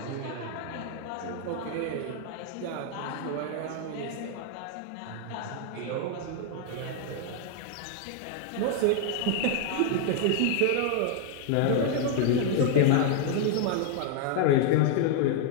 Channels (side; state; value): both; different; correlation 0.00